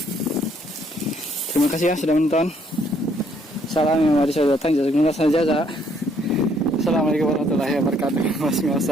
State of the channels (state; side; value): normal; both; correlation 0.67